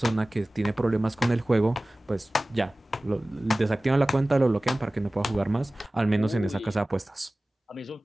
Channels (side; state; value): both; normal; correlation 0.98